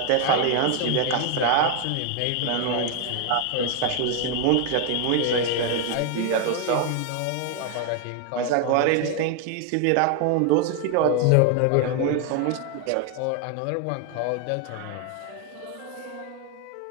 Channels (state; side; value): different; both; correlation 0.01